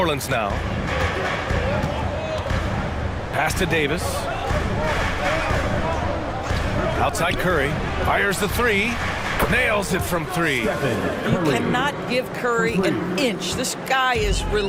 now. Pass to Davis. Outside Curry. Fires the 3. Nails it from 3. You cannot give Curry an inch. This guy is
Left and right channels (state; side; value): identical; both; correlation 1.00